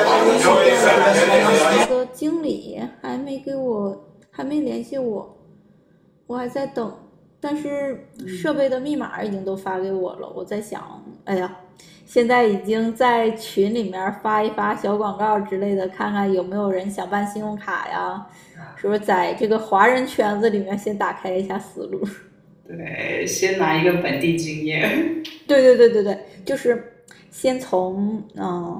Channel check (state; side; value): identical; both; correlation 1.00